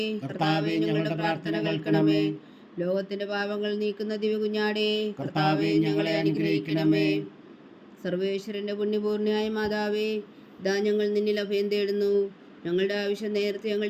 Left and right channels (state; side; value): identical; both; correlation 1.00